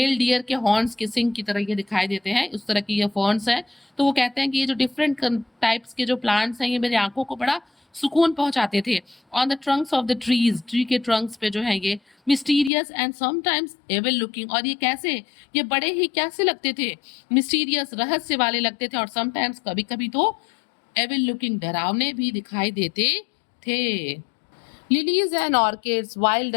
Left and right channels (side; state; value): right; drops out; at 12.7 s